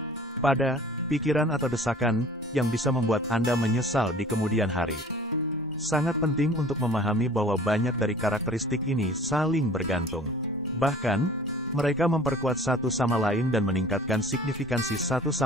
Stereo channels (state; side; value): normal; both; correlation 0.47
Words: pada pikiran atau desakan yang bisa membuat Anda menyesal di kemudian hari. Sangat penting untuk memahami bahwa banyak dari karakteristik ini saling bergantung. Bahkan, mereka memperkuat satu sama lain dan meningkatkan signifikansi satu